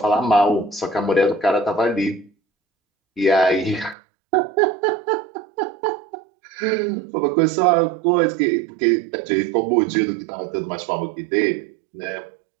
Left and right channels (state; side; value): drops out; left; at 4.0 s